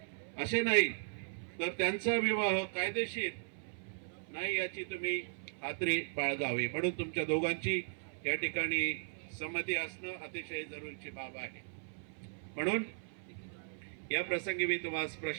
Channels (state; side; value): silent; left; 53 dB below the other